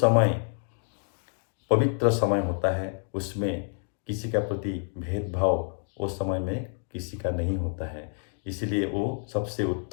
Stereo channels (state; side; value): silent; right; 56 dB below the other